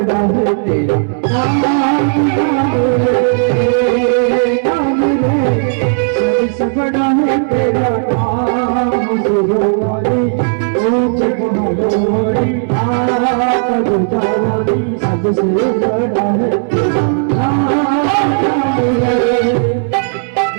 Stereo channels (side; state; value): left; silent; digital silence